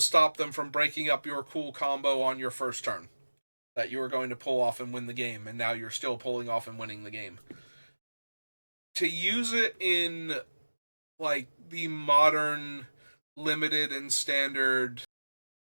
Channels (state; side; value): inverted; both; correlation -1.00